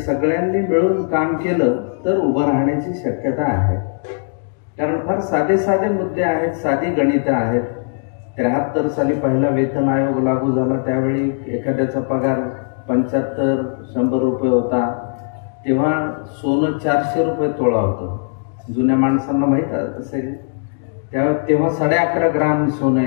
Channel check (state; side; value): silent; right; digital silence